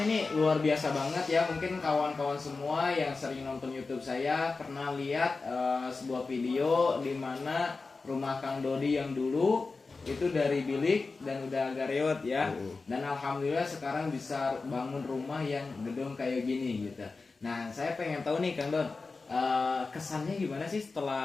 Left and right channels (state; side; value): quieter; right; 4.0 dB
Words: ini luar biasa banget ya. Mungkin kawan-kawan semua yang sering nonton YouTube saya pernah lihat sebuah video di mana rumah Kang Dodi yang dulu itu dari bilik dan udah agak reot ya. Dan alhamdulillah sekarang bisa bangun rumah yang gedung kayak gini gitu. Nah, saya pengen tahu nih Kang Don, kesannya gimana sih